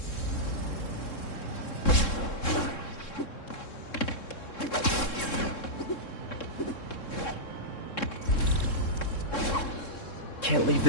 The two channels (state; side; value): late; right; 3.7 ms